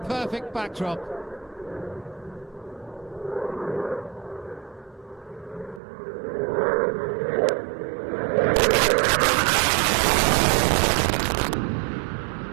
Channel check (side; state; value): left; drops out; at 5.8 s